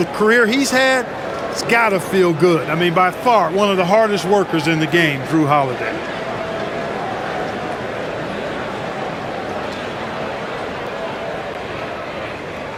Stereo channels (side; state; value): both; identical; correlation 1.00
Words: career he's had. It's got to feel good. I mean, by far, one of the hardest workers in the game, Drew Holiday.